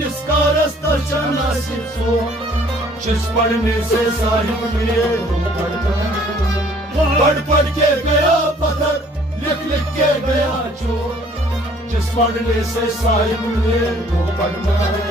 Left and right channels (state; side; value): normal; both; correlation 0.57